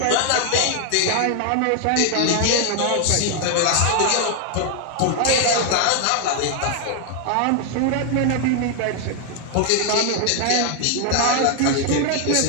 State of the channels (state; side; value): different; both; correlation 0.00